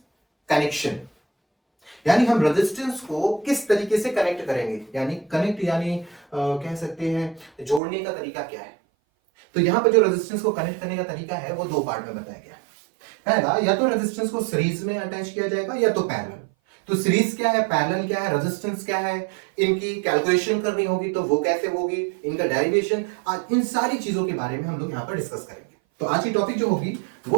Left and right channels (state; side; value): drops out; left; at 7.8 s